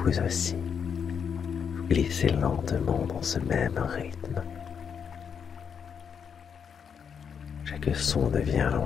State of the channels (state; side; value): quieter; right; 7.1 dB